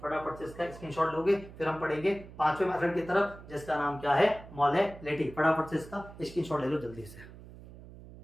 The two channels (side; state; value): right; noise; hum, 17 dB below the sound